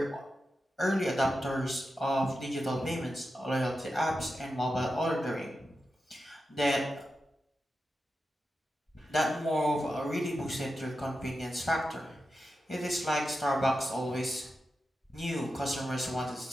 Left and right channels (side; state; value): both; normal; correlation 0.90